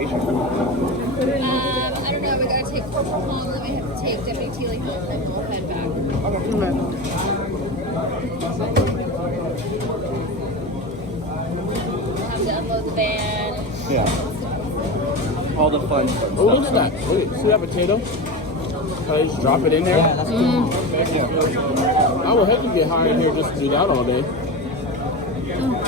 I don't know. We gotta take corporal home, then we have to take WT like home, and then we'll head back. We'll have to unload the van. Yeah. All the fun stuff. Oh, look at that. Look at, see that potato? How you just drop it in there? Yeah, that's cool. I would hate to get high in here just to do that all day.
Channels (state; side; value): normal; both; correlation 0.24